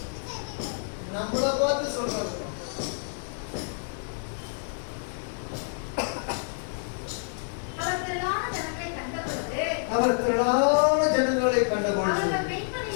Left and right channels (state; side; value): silent; right; digital silence